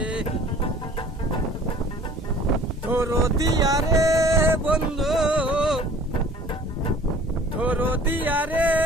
দরদিয়া রে বন্ধু, দরদিয়া রে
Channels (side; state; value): both; normal; correlation 0.49